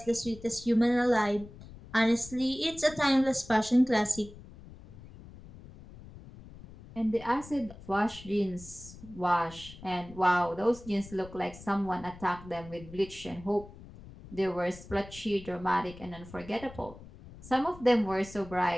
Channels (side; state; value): left; noise; rumble, 18 dB below the sound